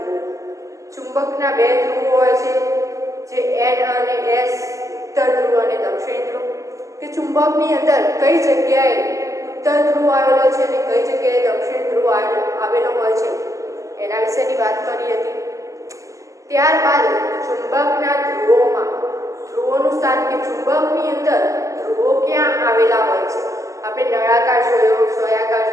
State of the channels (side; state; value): left; late; 0.16 ms